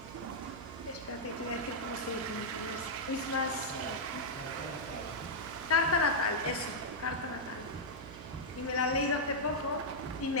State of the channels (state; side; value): noise; right; hum, 13 dB below the sound